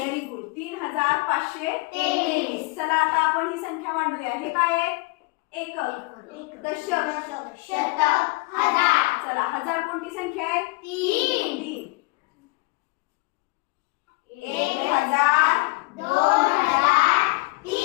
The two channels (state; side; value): quieter; right; 25.1 dB